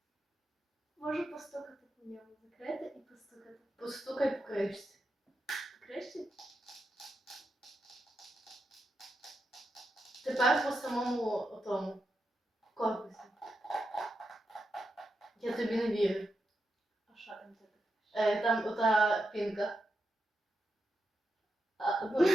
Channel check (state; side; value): normal; both; correlation 0.86